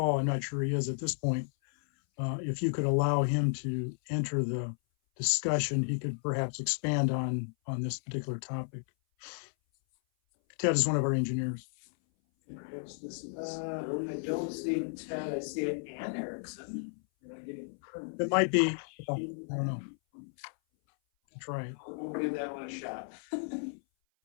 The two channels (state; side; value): silent; right; 56 dB below the other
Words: I'm not sure he is at this point. If you could allow him to enter the discussion, he could perhaps expand on this particular topic. Ted is one of our engineers. Perhaps this is, I don't see Ted, I see Ann Erickson. You're not getting a permit. It might be, I don't know. Try it. We'll give that one a shot.